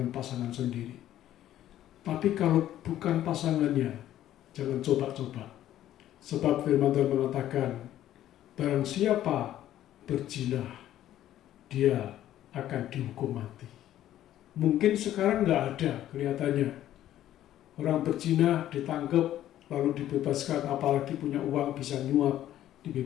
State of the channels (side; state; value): right; quieter; 12.6 dB